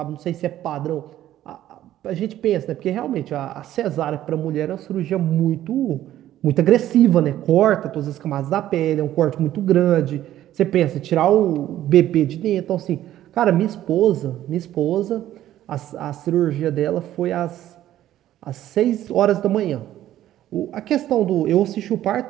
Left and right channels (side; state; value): left; quieter; 12.9 dB